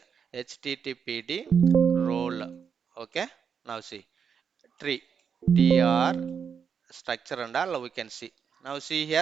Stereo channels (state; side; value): quieter; left; 6.8 dB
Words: httpd role. Okay. Now see tree tr structure and all we can see. Now see